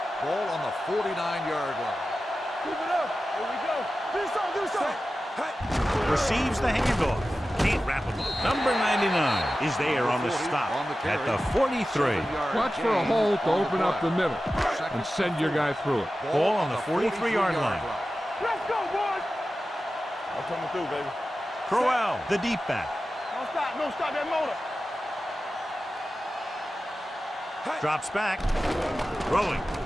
Ball on the 49-yard line. Keep it up. Here we go. Do something. Receives the handoff. Can't wrap him up. Number 99 is there on the stop at the 43. Watch for a hole to open up the middle and send your guy through it. Ball on the 43-yard line. Let's go, boys. I'm coming through, baby. Crowell, the deep back. Don't stop that motor. Drops back. Throwing.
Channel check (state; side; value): normal; both; correlation 0.94